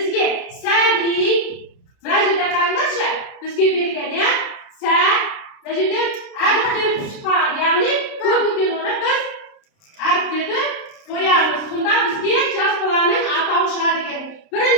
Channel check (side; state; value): right; late; 29 ms